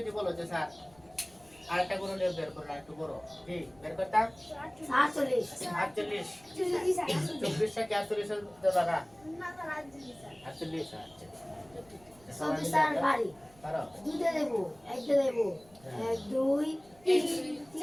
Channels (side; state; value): right; noise; rumble, 27 dB below the sound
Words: বলো যে স্যার আরেকটা গুণনীয়ক বের করুন একটু বড় কি বের করতাম 48 48 24 টা কি 48 এর দ্বারা 48 সংসার বাড়ি পারো দুইটা দেব একটা দেব 1 2 3